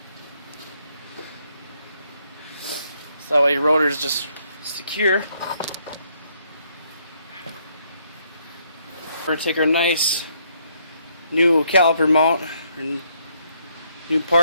So that way your rotor is just secure. We're going to take our nice new caliper mount and new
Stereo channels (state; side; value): inverted; both; correlation -0.71